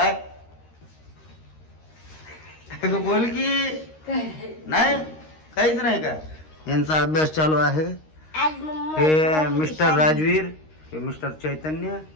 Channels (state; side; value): late; right; 13 ms